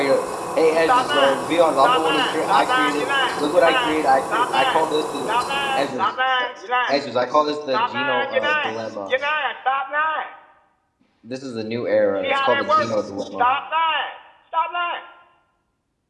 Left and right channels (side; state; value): both; identical; correlation 1.00